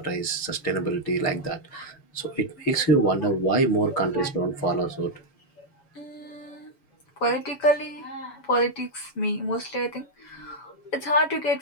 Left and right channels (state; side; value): late; right; 7.1 ms